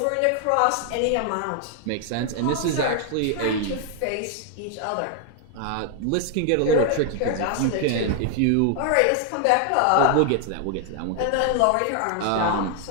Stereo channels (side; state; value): both; different; correlation 0.00